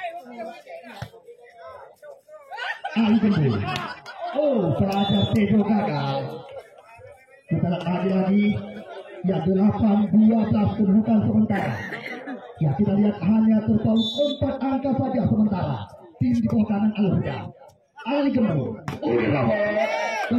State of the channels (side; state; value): both; identical; correlation 1.00